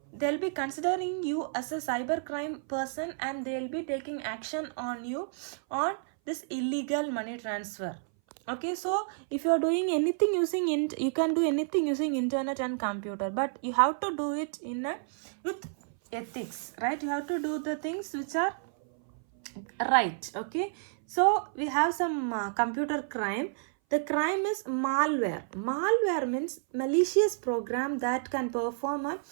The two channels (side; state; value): left; silent; 58 dB below the other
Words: they'll be considering you as a cybercrime person, and they'll be taking action on you on this illegal money transfer. Okay, so if you are doing anything using you can do anything using internet and computer, but you have to do it in with ethics, right? You have to do the things which are right. Okay, so we have some computer crime. The crime is malware. Malware means malicious program that can perform a